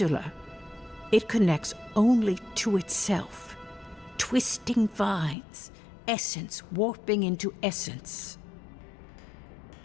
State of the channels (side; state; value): right; drops out; at 5.4 s